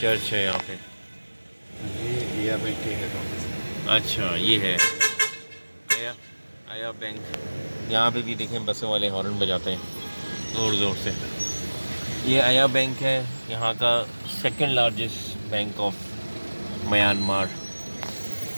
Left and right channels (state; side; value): inverted; both; correlation -1.00